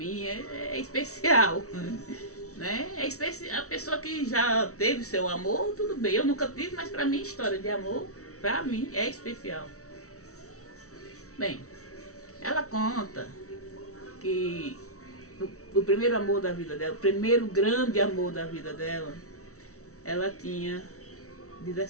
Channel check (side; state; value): right; late; 0.64 ms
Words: é especial. Né? É especial. A pessoa que já teve seu amor, tudo bem. Eu nunca tive, mas pra mim história de amor, pra mim, é especial. Bem, ela conta que o primeiro amor da vida dela, o primeiro grande amor da vida dela, ela tinha